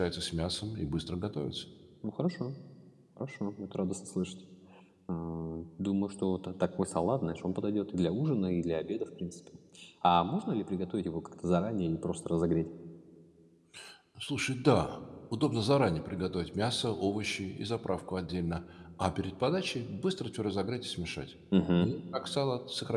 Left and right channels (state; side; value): identical; both; correlation 1.00